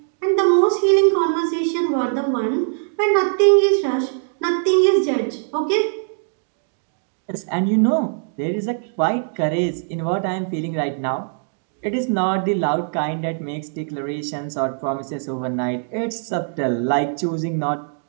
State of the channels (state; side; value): silent; left; digital silence